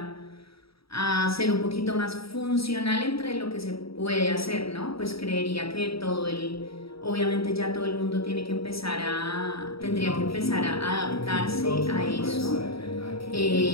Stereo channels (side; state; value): right; late; 0.76 ms